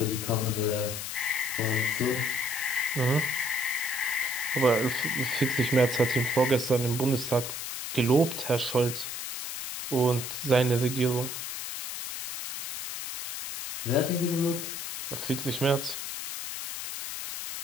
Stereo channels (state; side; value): noise; left; hiss, 6 dB below the sound